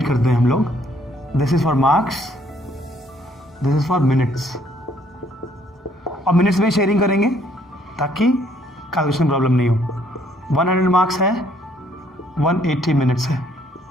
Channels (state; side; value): normal; both; correlation 0.65